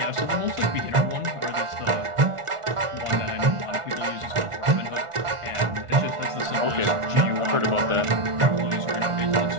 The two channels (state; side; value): late; left; 1.4 ms